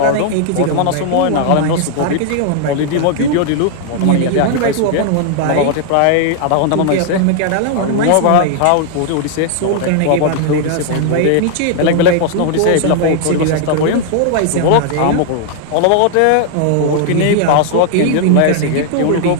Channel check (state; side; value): different; both; correlation 0.00